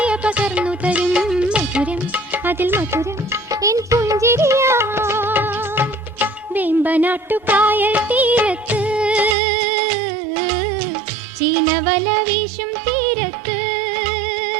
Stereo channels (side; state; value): left; drops out; at 9.3 s